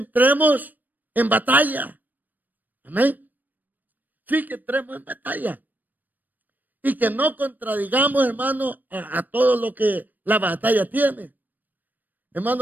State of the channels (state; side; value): late; left; 0.087 ms